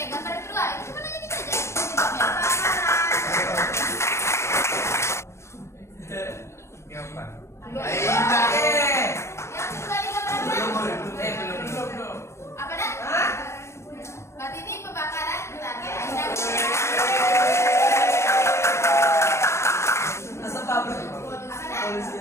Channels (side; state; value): right; late; 0.13 ms